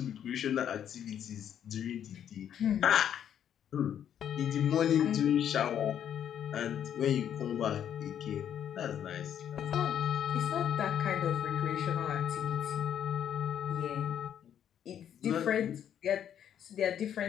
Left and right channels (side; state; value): right; quieter; 9.5 dB